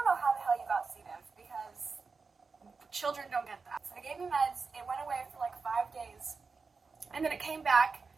know how the hell you got C. diff because children don't get that." So they gave me meds. It went away for like 5 days, and then it came back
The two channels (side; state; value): left; quieter; 4.6 dB